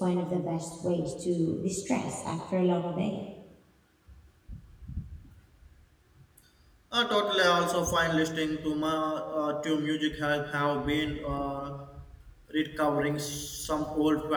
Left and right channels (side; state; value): both; identical; correlation 1.00